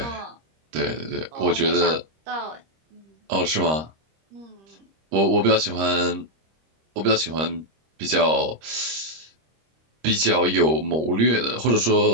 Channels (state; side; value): late; left; 26 ms